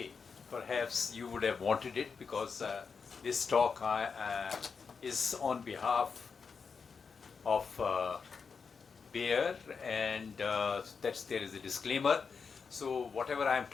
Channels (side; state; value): right; quieter; 5.5 dB